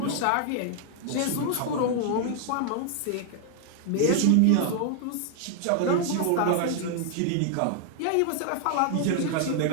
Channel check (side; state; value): both; different; correlation 0.00